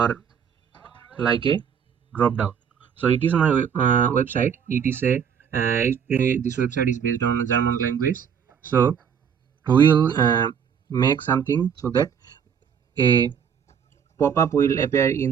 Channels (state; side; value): quieter; left; 7.5 dB